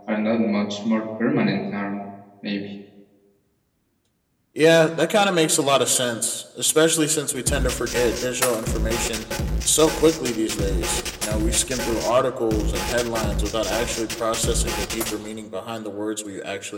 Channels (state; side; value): identical; both; correlation 1.00